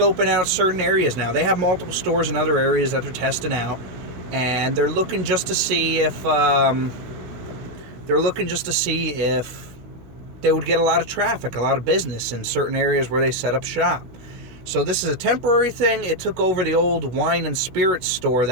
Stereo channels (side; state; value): left; late; 16 ms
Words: out certain areas now. They have multiple stores in other areas that they're testing out, and they're looking just to see if they would get a lot of traffic, a lot of business in certain areas where they set up shop. So this is a temporary thing. It took over the old wine and spirits store